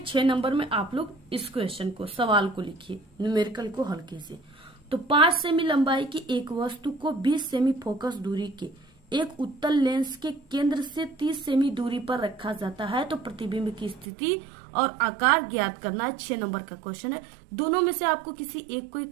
6 नंबर में आप लोग इस क्वेश्चन को, सवाल को लिखिए, न्यूमेरिकल को हल कीजिए। तो 5 सेमी लंबाई की एक वस्तु को 20 सेमी फोकस दूरी के एक उत्तल लेंस के केंद्र से 30 सेमी दूरी पर रखा जाता है, तो प्रतिबिंब की स्थिति और आकार ज्ञात करना है। 6 नंबर का क्वेश्चन है। दोनों में से आपको किसी एक को ही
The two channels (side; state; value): left; drops out; at 14.1 s